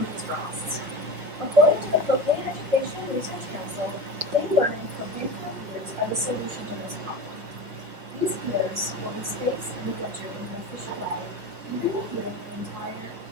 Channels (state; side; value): late; left; 5.3 ms